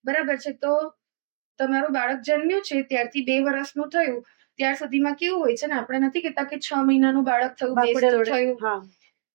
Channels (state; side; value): silent; left; digital silence